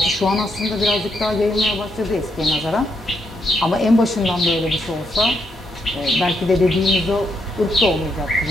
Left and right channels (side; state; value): both; normal; correlation 0.78